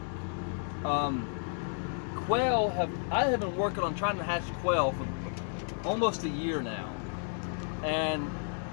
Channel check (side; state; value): right; silent; 56 dB below the other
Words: I have been working on trying to hatch quail for almost a year now, and